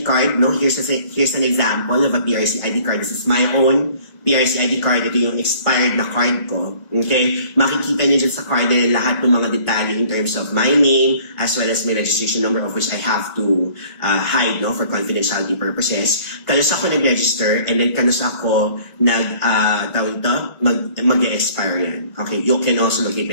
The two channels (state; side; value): late; right; 1.7 ms